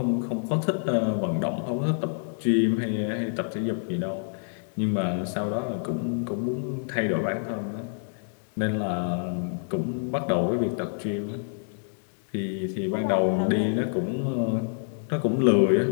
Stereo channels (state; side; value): silent; right; 60 dB below the other